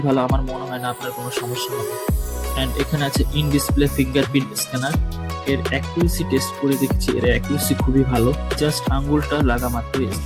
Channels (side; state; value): both; identical; correlation 1.00